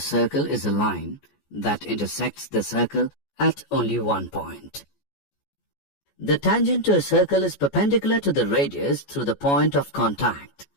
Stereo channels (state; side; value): late; right; 14 ms